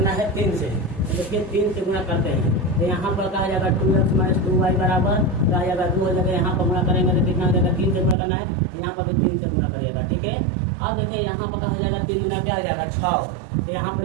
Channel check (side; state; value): left; drops out; at 8.2 s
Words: है 3 से, तो देखिए 3 से गुणा करते हैं। तो यहाँ पर कहा जाएगा 2x माइनस 2y बराबर क्या आ जाएगा 2 हो जाएगा। यहाँ पर गुणा करेंगे तो कितना हो जाएगा 3 से गुणा करना है, यहाँ पर भी 3 से गुणा करिएगा। ठीक है। अब देखिए यहाँ पर कहा जाएगा 3 गुना क्या आ जाएगा 6। तो यहाँ पर